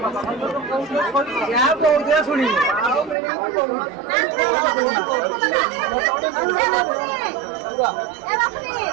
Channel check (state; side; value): drops out; left; at 3.2 s